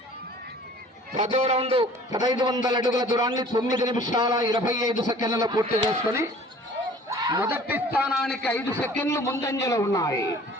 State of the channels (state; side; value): normal; both; correlation 0.49